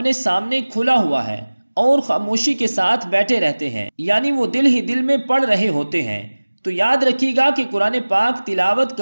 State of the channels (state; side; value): inverted; both; correlation -1.00